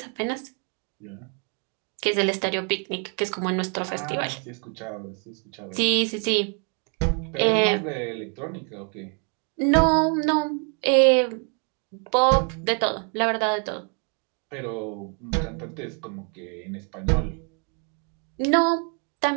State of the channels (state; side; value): quieter; left; 39.2 dB